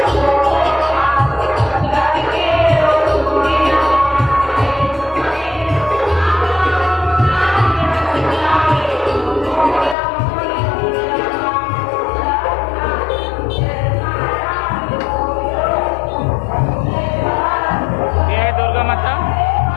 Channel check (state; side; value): drops out; right; at 10.0 s